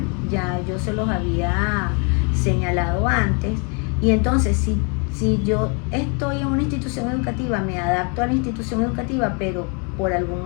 ya yo se los había señalado antes, y entonces si yo estoy en una institución educativa, me adapto a la institución educativa, pero por algún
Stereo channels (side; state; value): right; quieter; 36.0 dB